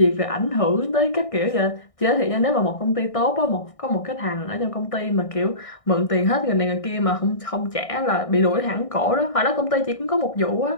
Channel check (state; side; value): late; right; 1.6 ms